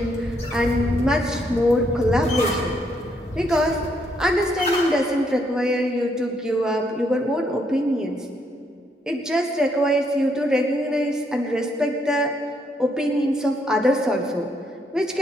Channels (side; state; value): both; normal; correlation 0.74